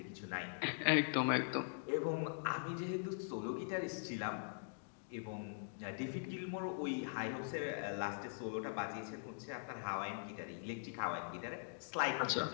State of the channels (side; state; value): right; silent; digital silence